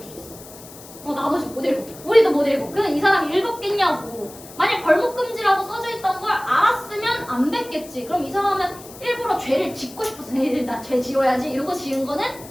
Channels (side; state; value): left; noise; hiss, 18 dB below the sound